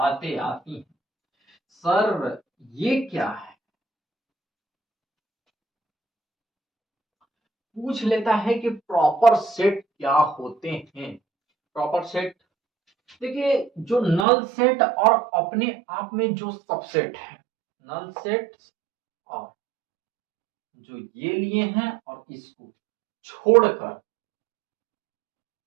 आती हैं सर ये क्या है, पूछ लेता है कि प्रॉपर सेट क्या होते हैं? प्रॉपर सेट देखिए जो नल सेट और अपने आप में जो सबसेट है, नल सेट और जो ये लिए हैं और इसको छोड़कर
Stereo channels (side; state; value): left; drops out; at 14.2 s